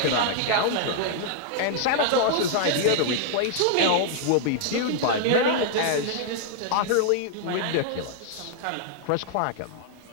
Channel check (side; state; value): both; different; correlation -0.01